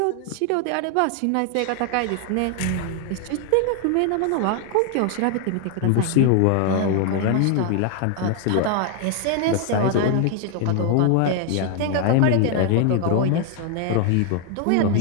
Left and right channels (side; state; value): both; different; correlation 0.01